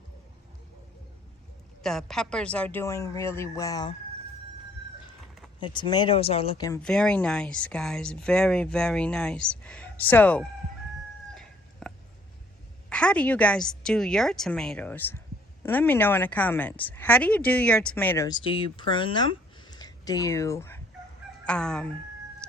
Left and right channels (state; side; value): normal; both; correlation 0.61